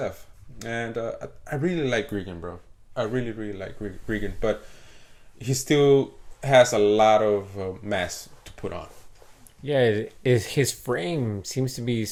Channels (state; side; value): identical; both; correlation 1.00